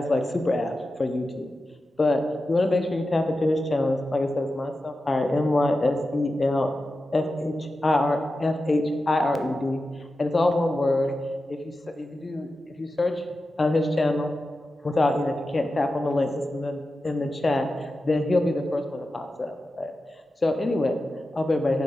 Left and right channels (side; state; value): both; normal; correlation 0.92